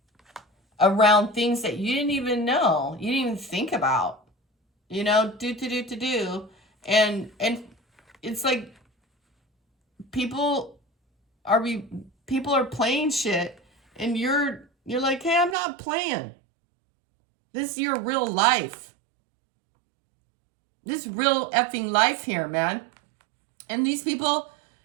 around things that you didn't even know, you didn't even think about, do. And it's like people are playing shit, and you're like, hey, I'm not playing. This is your real life. This real effing life here, man. And these people,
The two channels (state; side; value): drops out; left; at 15.6 s